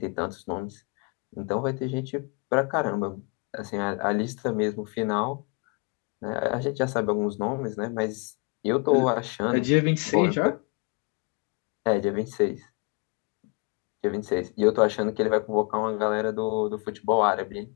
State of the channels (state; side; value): quieter; right; 30.6 dB